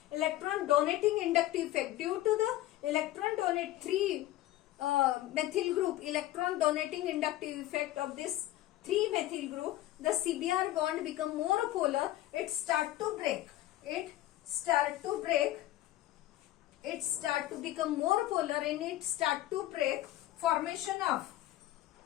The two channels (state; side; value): quieter; right; 15.3 dB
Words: electron donating inductive effect. Due to the electron donate 3 methyl group electron donating inductive effect of this 3 methyl group, the CBr bond become more polar. It start to become more polar and it start to break. Formation of